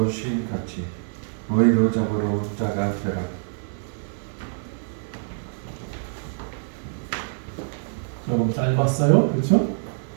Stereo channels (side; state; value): left; silent; digital silence